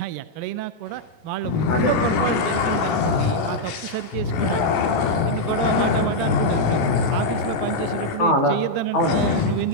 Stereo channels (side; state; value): right; late; 15 ms